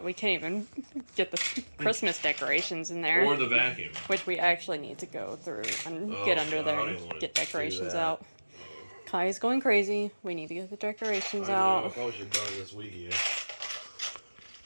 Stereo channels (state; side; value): inverted; both; correlation -1.00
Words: we can't even get the Christmas decorations in there. Or the vacuum. Which we actually need to go through and get under there and get decorations out. Kai's going crazy. We need to get the decorations out. I probably should have done it this weekend.